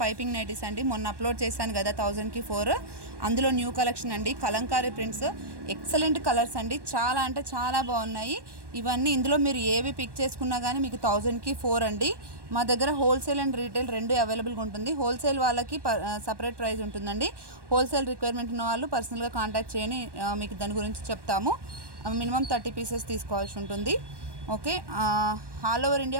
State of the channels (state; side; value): late; left; 1.1 ms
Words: నైటీస్ అండి. మొన్న అప్లోడ్ చేశాను కదా 1000కి 4. అందులో న్యూ కలెక్షన్ అండి. కలంకారీ ప్రింట్స్, ఎక్సలెంట్ కలర్స్ అండి. చాలా అంటే చాలా బాగున్నాయి ఇవన్నీ. ఇందులో మీరు ఏవి పిక్ చేసుకున్నా కానీ మీకు 1000కి 4 అండి. మా దగ్గర హోల్సేల్ అండ్ రీటైల్ రెండు అవైలబుల్గా ఉంటుంది. హోల్సేల్ వాళ్ళకి సపరేట్ ప్రైస్ ఉంటుందండి. హోల్సేల్ రిక్వైర్మెంట్ ఉన్న వాళ్ళు పర్సనల్గా కాంటాక్ట్ చేయని మీకు దాని గురించి చెప్తాము. మినిమం 30 పీసెస్ తీసుకోవాల్సి ఉంటుంది. Okay, all over India